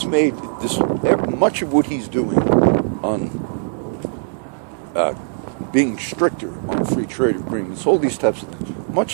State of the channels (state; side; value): silent; left; 66 dB below the other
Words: made this, much of what he's doing on being stricter on free trade agreements, all these types of things,